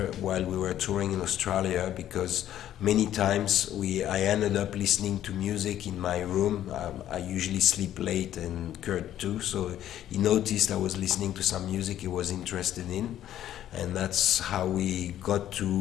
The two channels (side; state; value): right; quieter; 11.8 dB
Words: while we were touring in Australia, because many times I ended up listening to music in my room. I usually sleep late, and Kurt too, so he noticed I was listening to some music he was interested in, and that's how we got